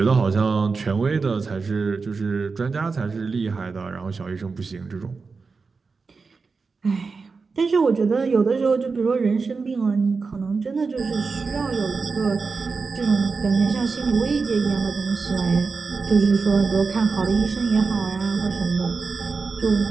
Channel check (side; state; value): left; quieter; 4.6 dB